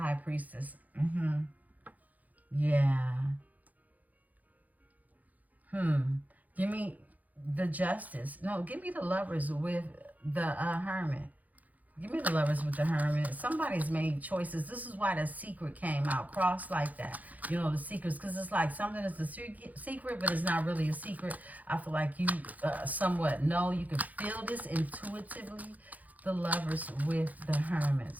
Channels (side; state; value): left; late; 0.079 ms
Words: Priestess. Yeah. Give me the Justice. No, give me the Lovers with the Hermit. Give me the Lovers with the Hermit. Somebody's made choices. This is why the secret came out. Cross like that. You know, the secrets. Because it's like something is a secret, but it's not really a secret. I feel like you somewhat know. You can feel this intuitively. The Lovers with the Hermit